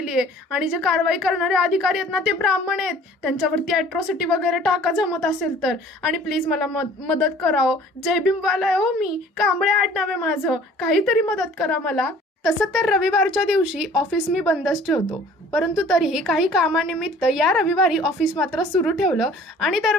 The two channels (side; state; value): both; normal; correlation 0.51